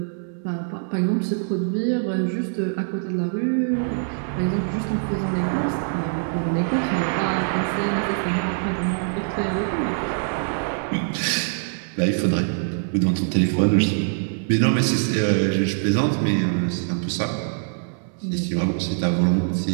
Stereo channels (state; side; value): silent; left; 63 dB below the other